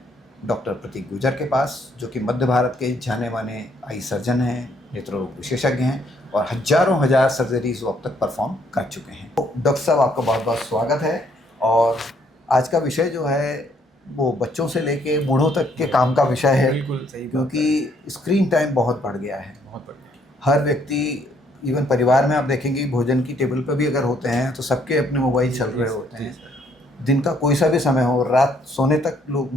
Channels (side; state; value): both; normal; correlation 0.68